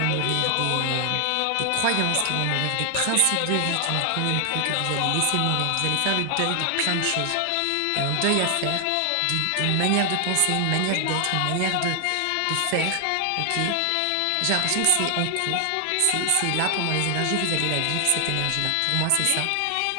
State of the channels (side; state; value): both; different; correlation 0.00